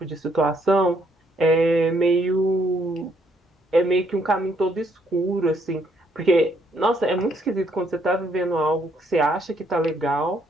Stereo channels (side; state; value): both; normal; correlation 0.70